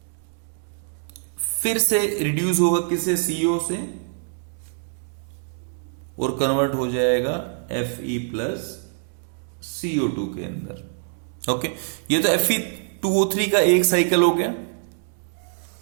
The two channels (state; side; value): silent; left; digital silence